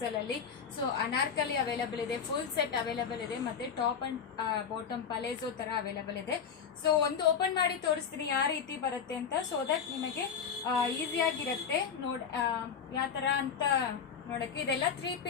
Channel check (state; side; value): quieter; right; 6.9 dB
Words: ಅಲ್ಲಿ. ಸೊ ಅನಾರ್ಕಲಿ ಅವೈಲೇಬಲ್ ಇದೆ, ಫುಲ್ ಸೆಟ್ ಅವೈಲೇಬಲ್ ಇದೆ, ಮತ್ತೆ ಟಾಪ್ ಅಂಡ್ ಬಾಟಮ್ ಪಲೇಜೋ ತರ ಅವೈಲೇಬಲ್ ಇದೆ. ಸೊ ಒಂದು ಓಪನ್ ಮಾಡಿ ತೋರಿಸ್ತೀನಿ ಯಾವ ರೀತಿ ಬರುತ್ತೆ ಅಂತ, ಸೊ ದಟ್ ನಿಮಗೆ ಈಸಿಯಾಗಿರುತ್ತೆ ಯಾವ ತರ ಅಂತ ನೋಡಕ್ಕೆ. ಇದೆಲ್ಲ 3